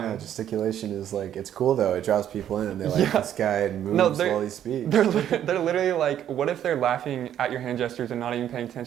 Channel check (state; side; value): quieter; left; 10.5 dB